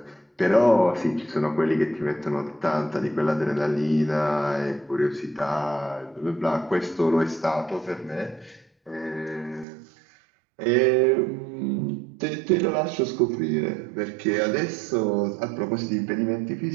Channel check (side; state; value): left; drops out; at 9.7 s